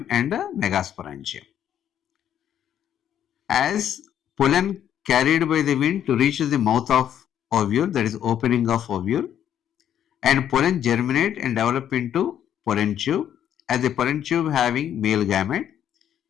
and megasporangium. As pollen carried by the wind to reach the mouth of ovule, that is opening of ovule, and pollen germinate and develop into pollen tube. As the pollen tube having male gamete,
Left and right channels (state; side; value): quieter; right; 10.0 dB